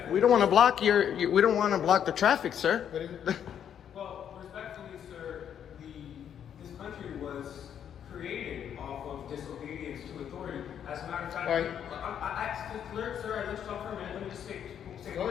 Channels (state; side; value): quieter; right; 9.0 dB